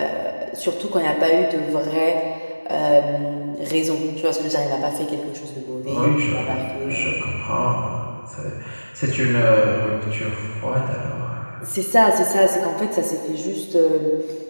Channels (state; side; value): inverted; both; correlation -1.00